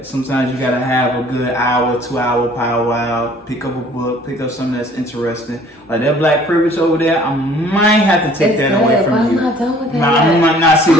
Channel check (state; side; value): normal; both; correlation 0.54